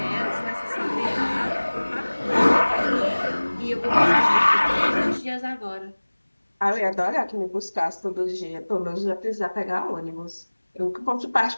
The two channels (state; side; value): inverted; both; correlation -1.00